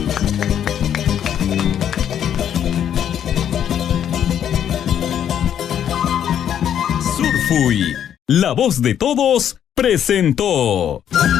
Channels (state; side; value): quieter; right; 9.6 dB